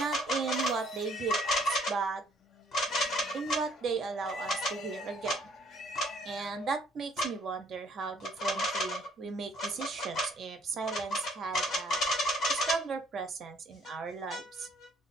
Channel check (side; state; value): both; normal; correlation 0.63